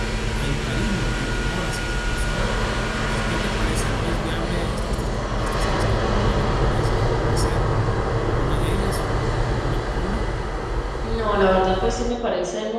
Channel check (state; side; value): identical; both; correlation 1.00